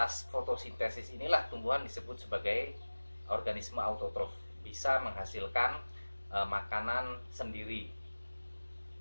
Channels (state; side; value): inverted; both; correlation -1.00